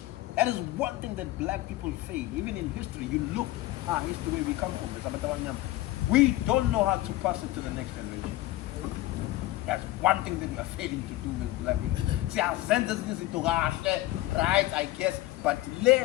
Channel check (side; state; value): right; quieter; 16.9 dB